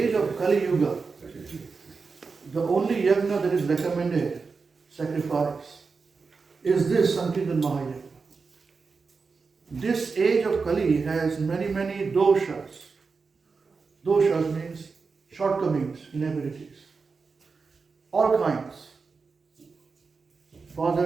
of Kali Yuga, the only yajna that is recommended, sacrifice, is this Sankirtan Mahayajna. This age of Kali has many doshas. Doshas means shortcomings, inabilities. All kinds.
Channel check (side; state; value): left; quieter; 4.7 dB